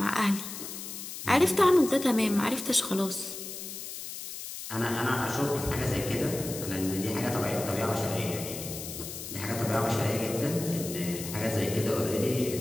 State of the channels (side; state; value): left; noise; hiss, 9 dB below the sound